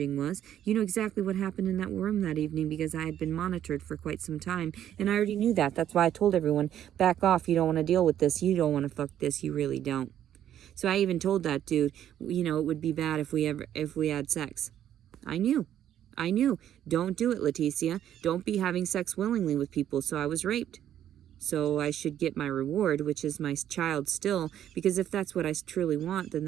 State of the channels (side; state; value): left; quieter; 10.8 dB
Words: was. You knew exactly what happened in that room that evening because I had been monitored for quite some time. And I already knew that. That's why I told everyone, back off. You don't want to deal with this. You don't want to fuck this. You really don't. So I even told that dude, it would be bad if we had sex. I knew. Don't do it, Leticia. Don't be having sex willingly with people. So I was raped. So I should get my reward, which is my child still. Because if that's what I truly want, then